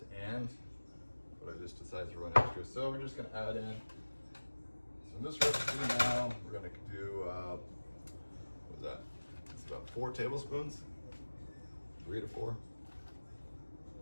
and, but I just decided to run extra. So we're just gonna add in, so in this recipe now, we're gonna do, what was that? It's about 4 tablespoons, 3 to 4.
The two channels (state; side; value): inverted; both; correlation -1.00